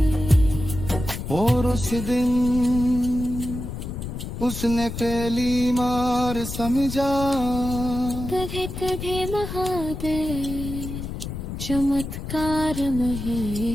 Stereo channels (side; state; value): left; noise; rumble, 7 dB below the sound